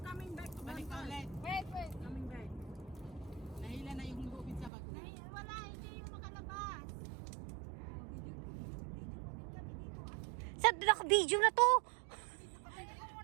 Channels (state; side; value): drops out; left; at 4.7 s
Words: coming back to Balik ka ulit. Wait. Coming back. Nahila na yung lubid sa bag. Wala, hindi yung makalabas. Sa naka-video na to!